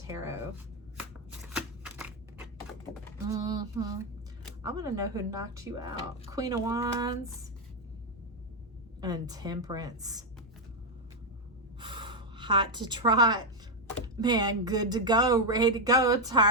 I want to know who knocked you out. Queen of Wands and Temperance. Hot to trot. Man, good to go, ready to go,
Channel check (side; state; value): both; normal; correlation 0.03